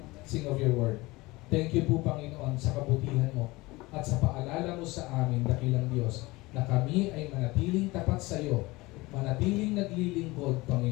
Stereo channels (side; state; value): right; quieter; 21.6 dB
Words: of your word. Thank you po, Panginoon, sa kabutihan mo at sa paalala mo sa amin, dakilang Diyos, na kami ay manatiling tapat sa iyo, manatiling naglilingkod,